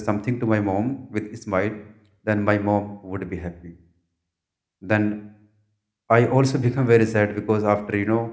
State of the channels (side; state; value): both; identical; correlation 1.00